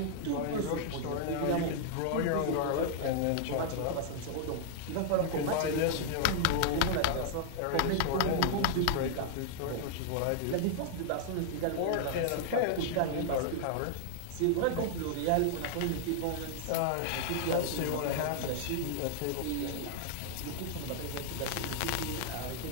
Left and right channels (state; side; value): different; both; correlation -0.01